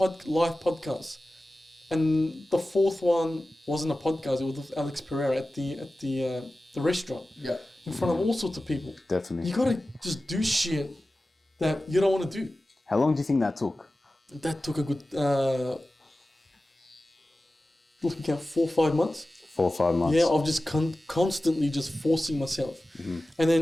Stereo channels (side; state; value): both; normal; correlation 0.95